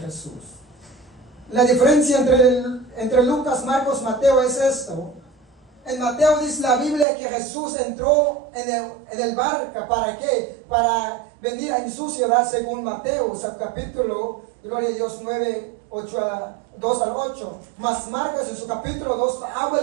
La diferencia entre Lucas, Marcos, Mateo es esto. En Mateo dice la Biblia que Jesús entró en el barco. ¿Para qué? Para venir en su ciudad según Mateo, o sea, capítulo, gloria a Dios, 9, 2 al 8. Mas Marcos en su capítulo 2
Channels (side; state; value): left; drops out; at 7.1 s